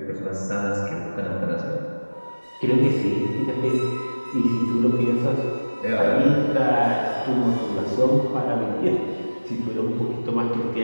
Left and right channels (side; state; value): both; inverted; correlation -1.00